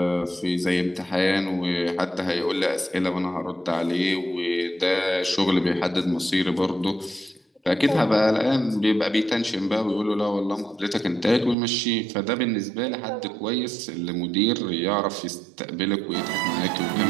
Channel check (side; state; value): left; drops out; at 11.6 s